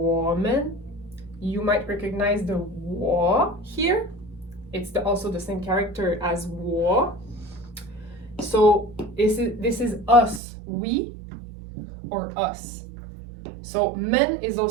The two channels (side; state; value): left; drops out; at 10.4 s